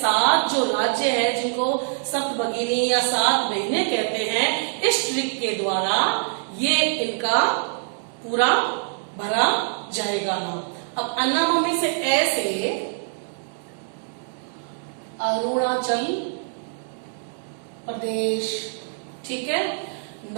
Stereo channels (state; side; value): silent; left; 62 dB below the other